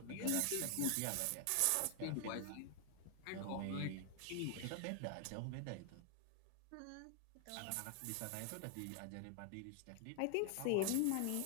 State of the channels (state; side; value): different; both; correlation 0.00